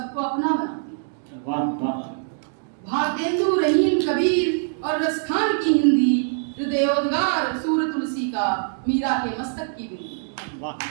अपना बनाती है। वाह वाह। भारतेंदु, रहीम, कबीर और रसखान की हिंदी, हृदयोद्गार सूर तुलसी का, मीरा के मस्तक की बिंदी। वाह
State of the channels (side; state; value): left; silent; digital silence